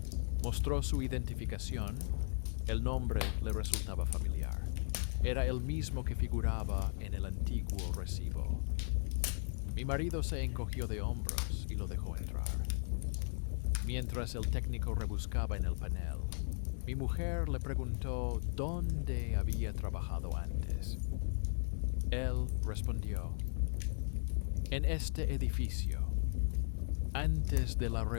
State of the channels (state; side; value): silent; right; 53 dB below the other